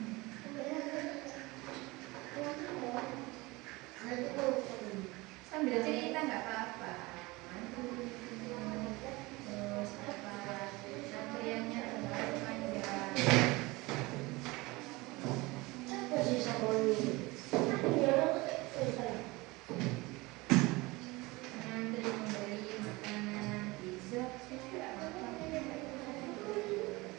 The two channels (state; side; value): quieter; left; 22.6 dB